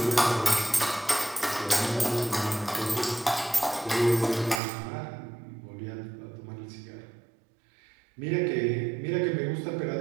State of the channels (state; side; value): drops out; left; at 4.6 s